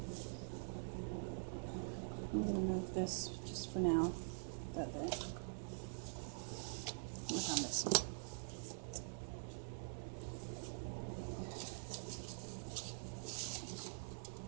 I'm going to move this just for now. That there. Look on this one.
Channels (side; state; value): left; silent; digital silence